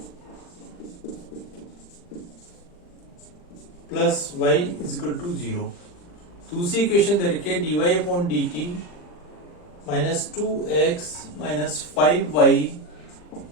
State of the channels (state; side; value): late; right; 40 ms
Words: plus y equal to 0। दूसरी इक्वेशन दे रखी है dy upon dt minus 2x minus 5y